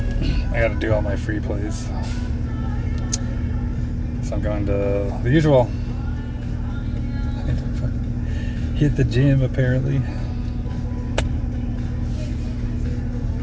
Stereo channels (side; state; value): both; identical; correlation 1.00